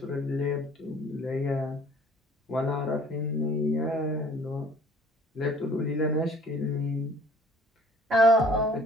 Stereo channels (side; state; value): both; normal; correlation 0.52